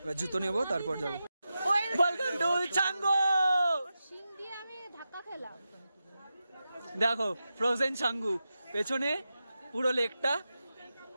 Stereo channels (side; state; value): both; inverted; correlation -0.91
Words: এবার জুতো নেবো তারপর যাবো। দেখো ফ্রোজেন ছাঙ্গু, পেছনে পুরো লেকটা,